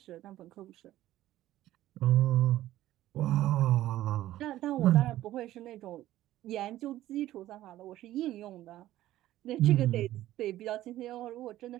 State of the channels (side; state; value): left; quieter; 14.4 dB